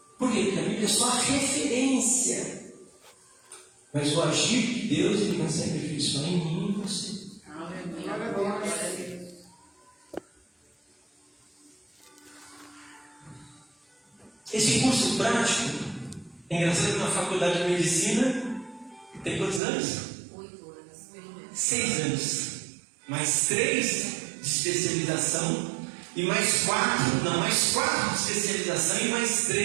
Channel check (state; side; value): drops out; left; at 19.6 s